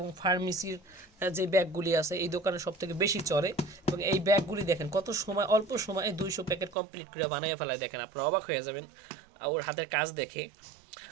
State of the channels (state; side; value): drops out; left; at 6.8 s